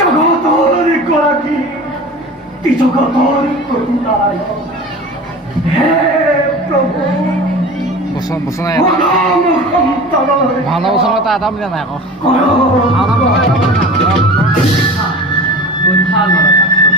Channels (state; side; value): normal; both; correlation 0.35